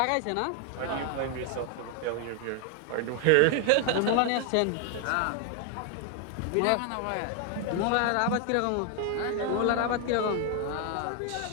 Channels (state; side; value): different; both; correlation 0.00